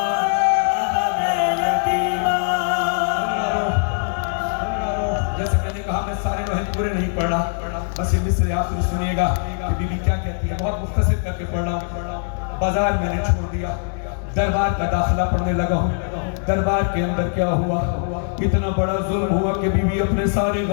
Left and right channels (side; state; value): right; silent; 61 dB below the other